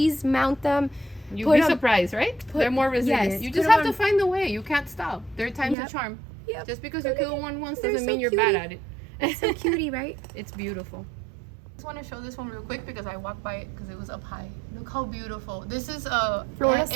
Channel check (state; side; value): drops out; left; at 5.8 s